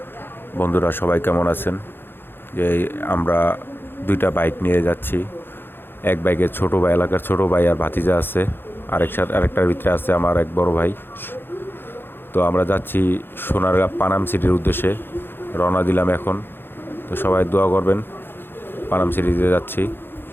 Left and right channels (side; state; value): right; late; 0.10 ms